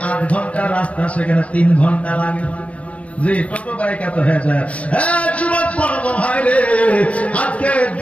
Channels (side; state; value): right; late; 0.064 ms